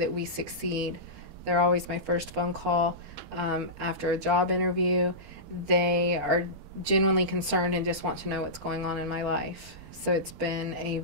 we succeed. They're always my first phone call after a job interview. They are genuinely concerned and just want to know what's going on in my life. So it's been a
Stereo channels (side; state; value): left; late; 12 ms